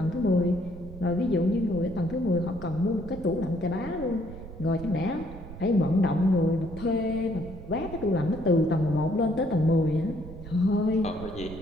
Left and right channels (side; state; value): right; noise; rumble, 13 dB below the sound